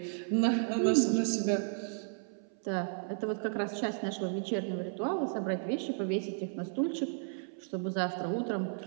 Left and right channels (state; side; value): silent; left; 55 dB below the other